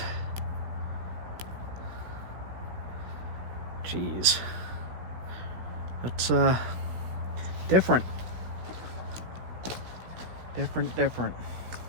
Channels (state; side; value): late; left; 16 ms